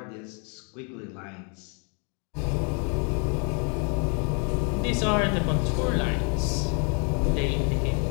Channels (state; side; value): quieter; right; 36.8 dB